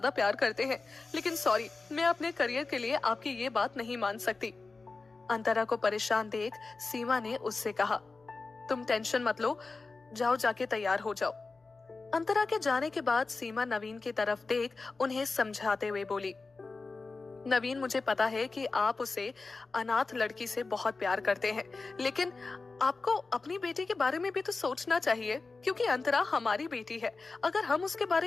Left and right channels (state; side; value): quieter; right; 3.9 dB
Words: प्यार करते हैं, लेकिन सॉरी, मैं अपने करियर के लिए आपकी ये बात नहीं मान सकती। अंतरा को परेशान देख सीमा ने उससे कहा, तुम टेंशन मत लो, जाओ जाके तैयार हो जाओ। अंतरा के जाने के बाद सीमा नवीन की तरफ देख उन्हें समझाते हुए बोली, नवीन, मुझे पता है कि आप उसे अनाथ लड़की से बहुत प्यार करते हैं, लेकिन आपको अपनी बेटी के बारे में भी तो सोचना चाहिए, क्योंकि अंतरा हमारी बेटी है। अगर हम उसके